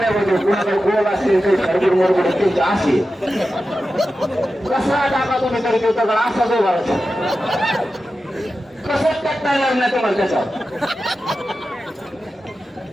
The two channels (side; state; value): both; normal; correlation 0.92